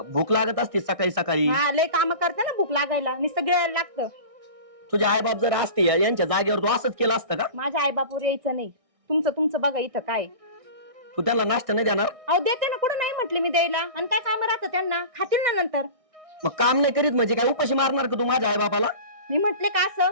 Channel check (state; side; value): late; left; 1.6 ms